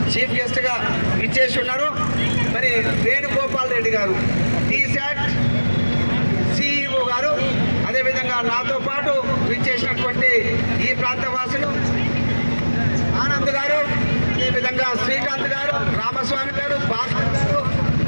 చీఫ్ గెస్ట్గా ఇచ్చేసి ఉన్నారు. మరి వేణుగోపాల్ రెడ్డి గారు టీశాట్ సిఇఓ గారు, అదేవిధంగా నాతో పాటు విచ్చేసినటువంటి ఈ ప్రాంత వాసులు ఆనంద్ గారు, అదేవిధంగా శ్రీకాంత్ గారు, రామస్వామి గారు, భాస్కర్ గారు,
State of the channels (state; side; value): inverted; both; correlation -1.00